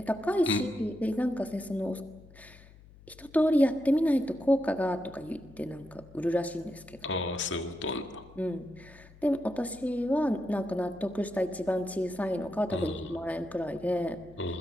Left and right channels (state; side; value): noise; left; hum, 22 dB below the sound